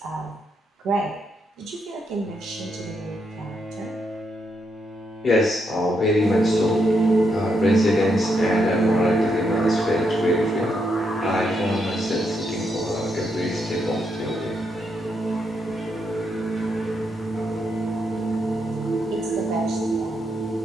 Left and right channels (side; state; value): both; normal; correlation 0.79